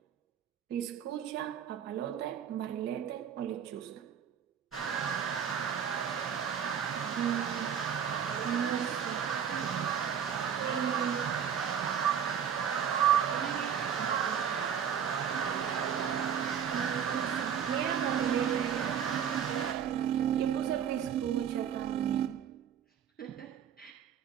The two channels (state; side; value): quieter; left; 8.2 dB